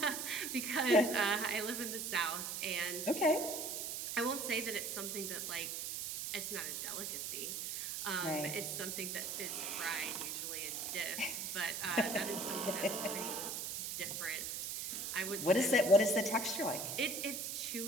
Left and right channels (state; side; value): noise; right; hiss, 4 dB below the sound